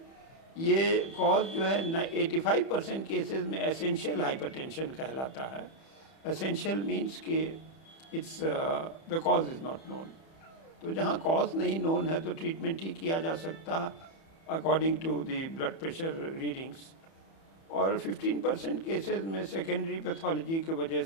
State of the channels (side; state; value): right; late; 30 ms